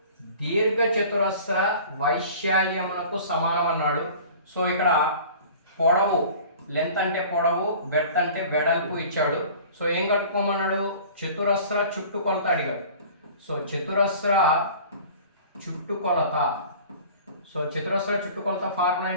దీర్ఘ చతురస్ర వైశాల్యమునకు సమానం అన్నాడు. సో ఇక్కడ పొడవు, లెంత్ అంటే పొడవు, బెర్త్ అంటే వెడల్పు ఇచ్చాడు. సో ఏం కట్టుకోమన్నాడు? చతురస్ర చుట్టుకొలత అడిగాడు. సో చతురస్ర చుట్టుకొలత. సో చతురస్ర చుట్టుకొలత ఫార్ములా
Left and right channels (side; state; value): both; inverted; correlation -0.44